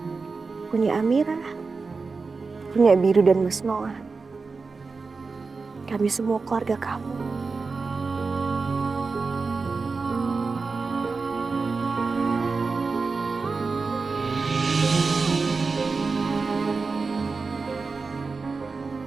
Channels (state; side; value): quieter; left; 4.4 dB